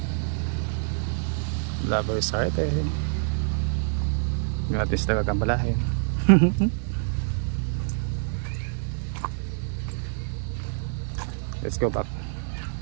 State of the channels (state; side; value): silent; left; digital silence